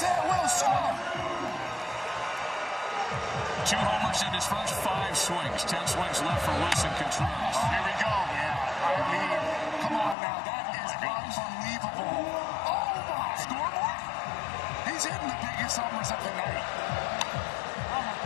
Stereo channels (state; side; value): drops out; right; at 10.2 s